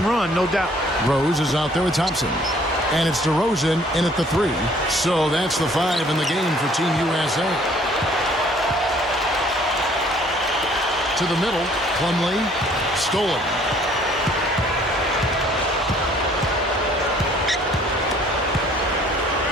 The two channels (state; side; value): normal; both; correlation 0.58